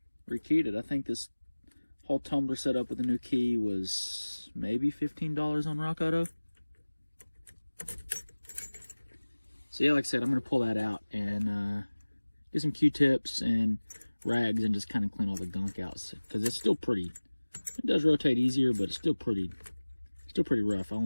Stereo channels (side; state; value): both; inverted; correlation -1.00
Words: Rekeyed it. I think this whole tumbler setup with the new key was maybe $15 on Rock Auto. So yeah, like I said, I'm going to pull that out and get some Q-tips and rags and just kind of clean all the gunk out, because it's still pretty, it does rotate easier, but it's still pretty rough. I